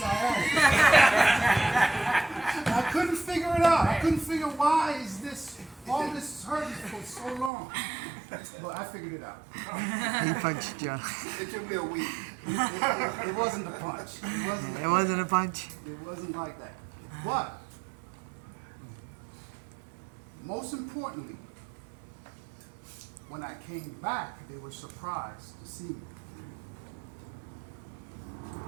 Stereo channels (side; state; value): left; drops out; at 7.5 s